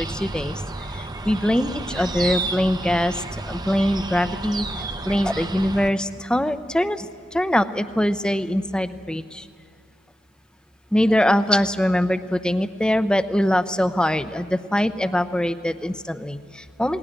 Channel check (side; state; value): both; normal; correlation 0.91